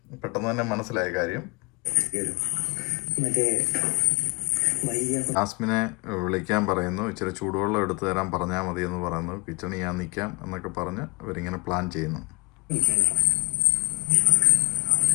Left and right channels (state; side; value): quieter; right; 28.5 dB